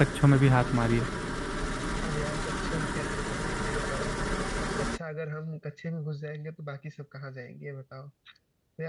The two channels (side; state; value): both; identical; correlation 1.00